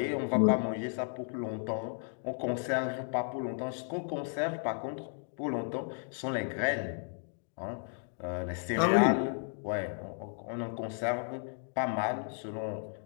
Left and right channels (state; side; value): silent; right; 55 dB below the other